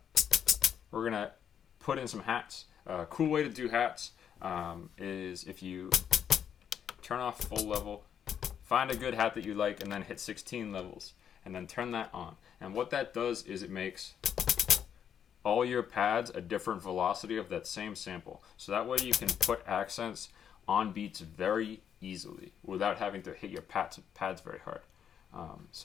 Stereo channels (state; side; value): quieter; right; 8.5 dB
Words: We're gonna put in some hats. A cool way to do hats is if you turn off full level, find a good hat that you like, and then hit 16 levels, and then turn that on. And what that does is it makes all your pads a different velocity of that same sample. So that way you can put accents on beats very easily without having to hit your pads very hard.